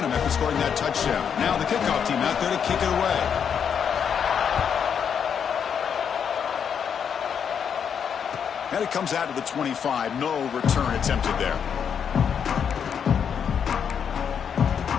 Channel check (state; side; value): quieter; right; 7.5 dB